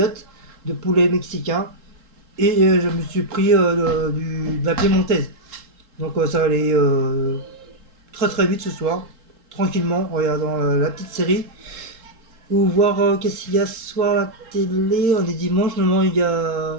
de poulet mexicain. Et je me suis pris de la piémontaise. Donc ça va aller très très vite ce soir, tranquillement, en regardant la petite série. Ou voir qu'est-ce qu'il y a ce soir à la télé. On est dimanche, normalement il y a.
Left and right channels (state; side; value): late; left; 3.7 ms